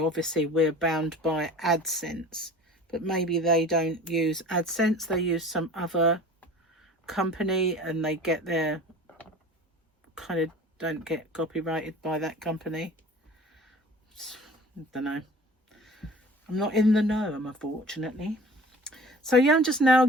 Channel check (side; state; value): both; normal; correlation 0.43